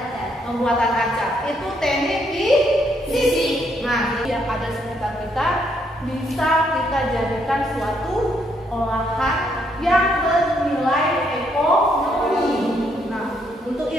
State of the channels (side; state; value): both; normal; correlation 0.73